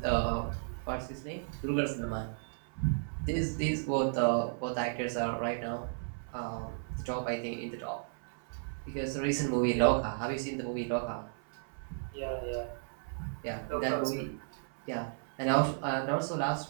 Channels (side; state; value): left; silent; 55 dB below the other